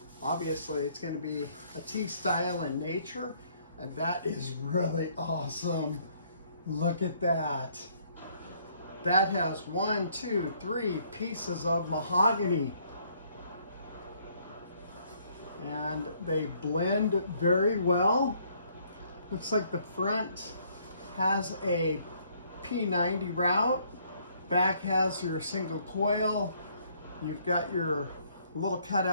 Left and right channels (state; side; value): inverted; both; correlation -0.65